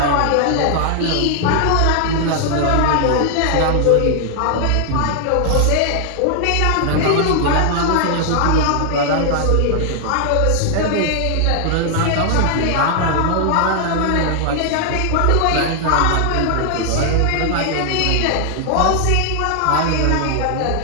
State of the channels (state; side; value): different; both; correlation 0.00